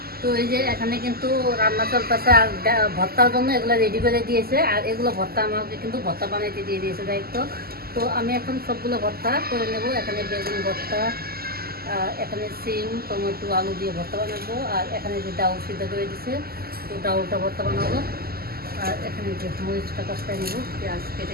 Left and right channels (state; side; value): late; left; 0.45 ms